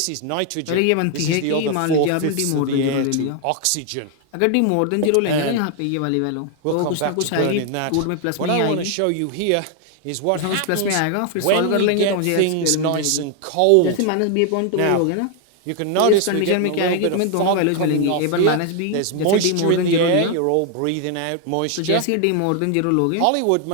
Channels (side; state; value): both; different; correlation 0.00